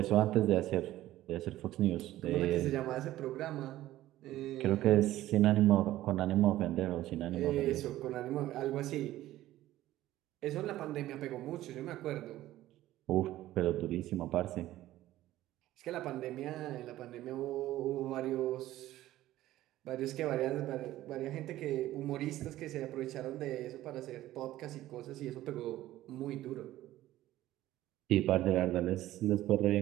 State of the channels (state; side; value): quieter; left; 14.9 dB